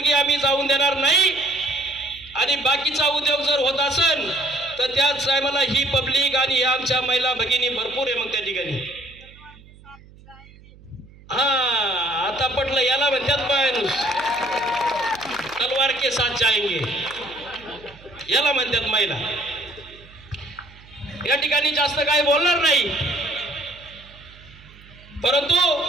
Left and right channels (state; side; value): noise; right; hum, 23 dB below the sound